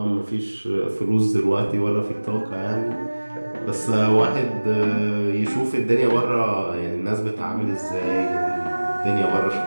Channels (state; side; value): inverted; both; correlation -1.00